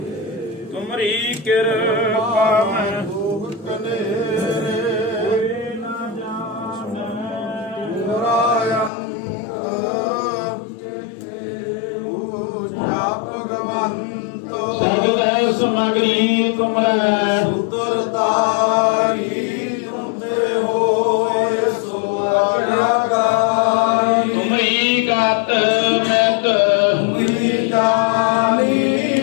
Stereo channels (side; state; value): right; drops out; at 8.9 s